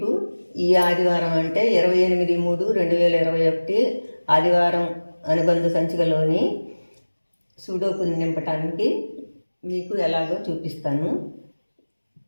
ఈ ఆదివారం అంటే 28/3/2021 ఆదివారం అనుబంధ సంచికలోని సూడోకు నింపటానికి మీకు ఎలాగో చూపిస్తాను.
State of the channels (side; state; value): both; inverted; correlation -1.00